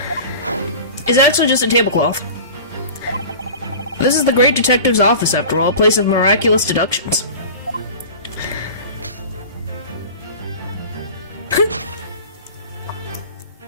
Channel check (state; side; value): inverted; both; correlation -0.37